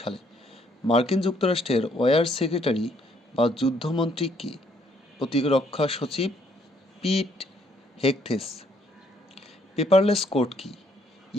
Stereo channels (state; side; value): normal; both; correlation 0.68